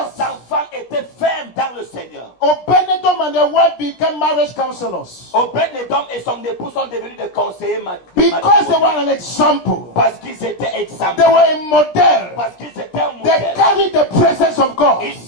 Les enfants étaient fermes dans le Seigneur. Obed-Edom and their wife became marriage counselors. Obed-Edom et son époux sont devenus des conseillers Because they were an example. parce qu'ils étaient exemples. They were a model. Parce qu'ils étaient un They modèle. carried the presence of God. Ils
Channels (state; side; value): late; right; 16 ms